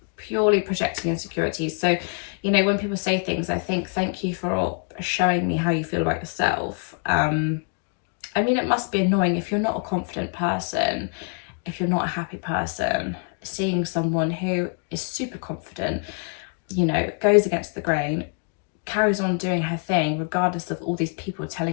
purely projecting insecurities. So, you know, when people say things, I think, thank you for showing me how you feel about yourself. I mean, it must be annoying if you're not a confident person, if you're not a happy person, seeing someone who is super confident, you know, goes against the grain, carries on doing her thing regardless of all these people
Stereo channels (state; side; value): quieter; right; 39.9 dB